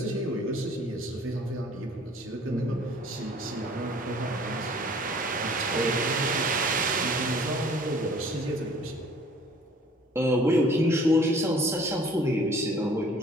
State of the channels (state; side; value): normal; both; correlation 0.53